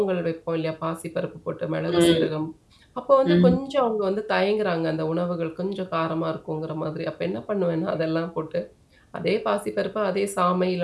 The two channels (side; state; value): both; identical; correlation 1.00